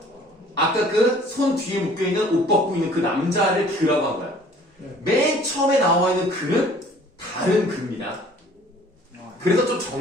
아까 그 손 뒤에 묶여있는 옷 벗고 있는 그 남자를 그라고 한 거야. 맨 처음에 나와 있는 그는 다른 그입니다. 그래서 좀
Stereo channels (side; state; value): both; normal; correlation 0.53